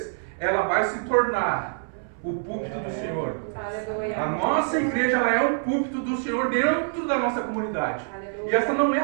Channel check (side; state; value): left; silent; 61 dB below the other